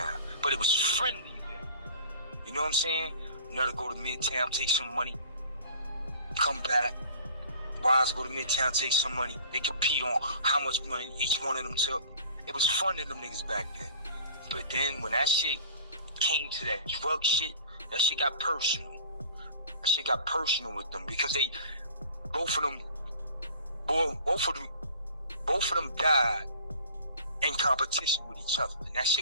but it was friendly then. You know what I'm saying? Another go to Midtown, take some money, come back. Wise go to Midtown, take some money. They compete on how much money each one of them took. It was fun to them niggas back then. But then when that shit came to that drug shit, that shit got personal. That shit got personal with them because they, both of them died in competition with each other. And that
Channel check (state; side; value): inverted; both; correlation -0.45